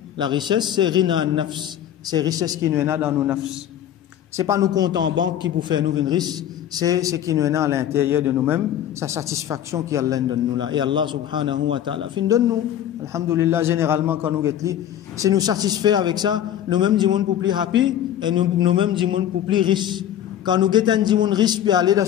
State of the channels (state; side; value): quieter; right; 10.8 dB